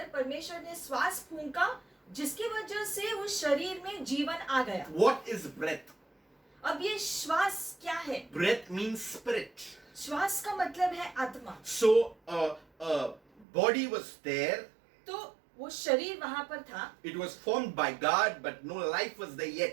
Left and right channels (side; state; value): left; drops out; at 13.5 s